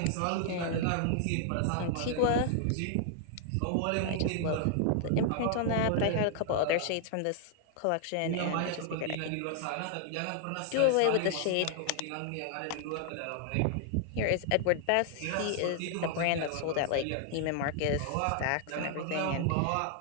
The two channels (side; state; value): both; different; correlation 0.00